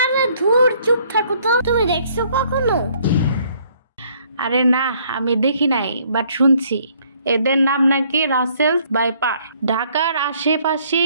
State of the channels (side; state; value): both; inverted; correlation -0.64